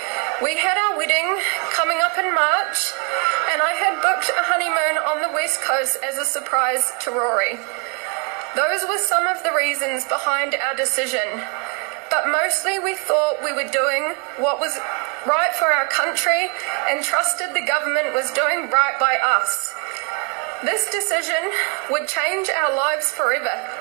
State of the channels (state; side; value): quieter; left; 35.2 dB